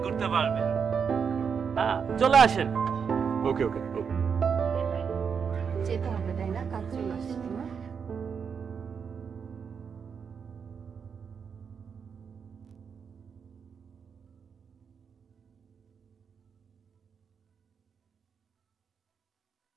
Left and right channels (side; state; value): left; quieter; 6.5 dB